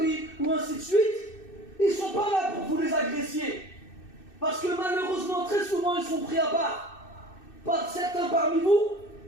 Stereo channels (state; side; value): late; right; 2.6 ms